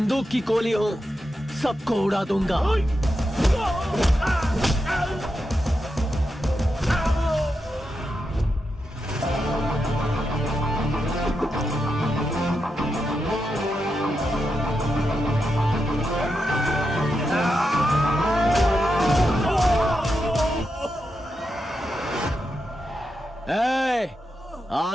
की गोली हूं, सबको उड़ा दूंगा।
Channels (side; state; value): both; normal; correlation 0.87